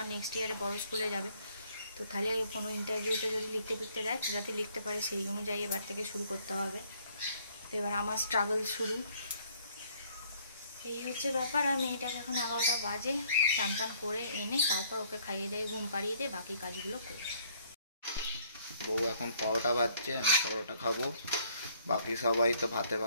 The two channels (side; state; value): both; inverted; correlation -0.63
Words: নেক্সট ইয়ারে বড় স্কুলে যাবে, তো তাহলে কোনো ইন্টারভিউতে যদি লিখতে দেয় যাতে লিখতে পারে, সেই অনুযায়ী এবার থেকে শুরু করতে হবে। তো এবার আমার স্ট্রাগল শুরু, এই হচ্ছে ব্যাপার। আর মেয়েটাকে এখন 11টা বাজে, চান টান করে এনে তারপর ওকে খাইয়ে দিয়ে ঘুম পাড়িয়ে দিয়ে বাকি কাজগুলো করি। বউ এখন পরোটা ভাজছে, আমি পরোটা খাবো, বাকি সবাই তো ভাতে